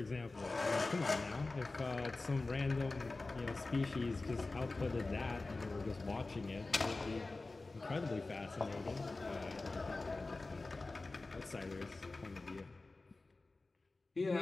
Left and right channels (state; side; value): quieter; right; 3.4 dB